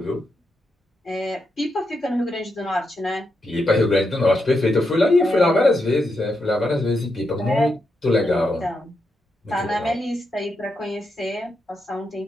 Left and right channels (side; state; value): both; normal; correlation 0.84